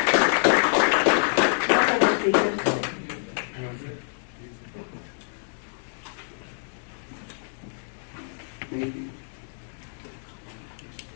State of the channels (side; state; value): right; silent; digital silence